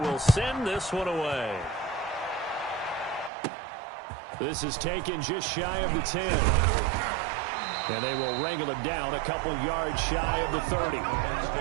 send this one away. This is taken just shy of the 10. And they will wrangle it down a couple yards shy of the 30.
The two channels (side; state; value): left; drops out; at 3.3 s